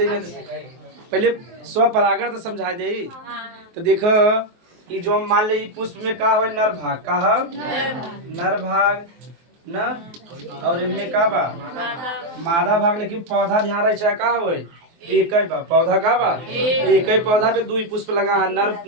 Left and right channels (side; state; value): left; late; 23 ms